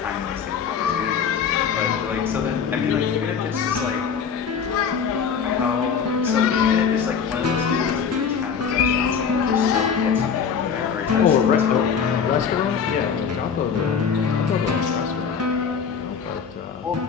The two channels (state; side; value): quieter; right; 6.7 dB